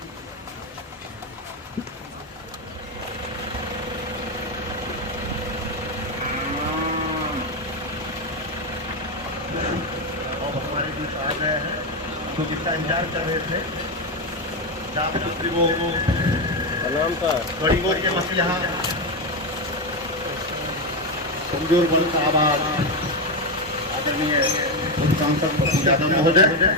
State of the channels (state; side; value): normal; both; correlation 0.09